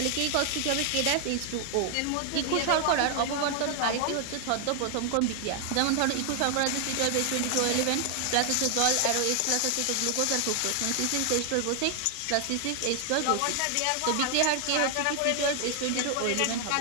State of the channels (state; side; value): different; both; correlation 0.00